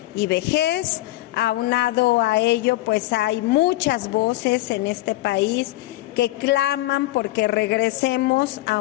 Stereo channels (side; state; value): right; quieter; 17.7 dB